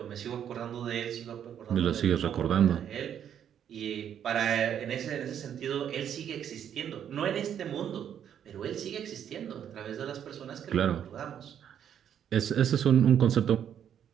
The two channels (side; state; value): left; quieter; 9.2 dB